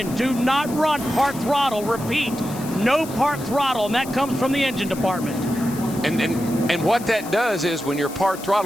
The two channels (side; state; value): left; noise; hiss, 15 dB below the sound